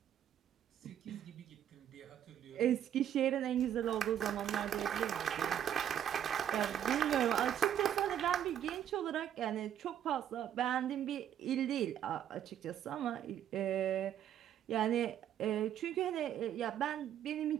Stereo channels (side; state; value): left; quieter; 10.1 dB